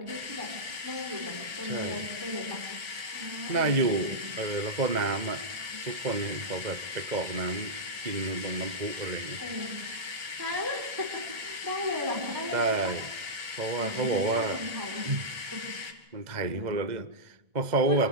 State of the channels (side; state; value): left; late; 1.3 ms